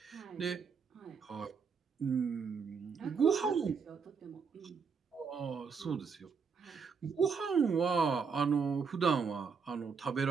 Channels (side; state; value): left; quieter; 5.7 dB